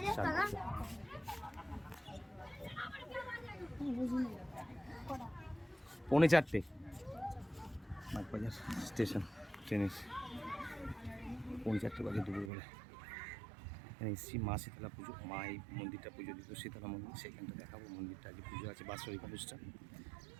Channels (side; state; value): left; drops out; at 12.5 s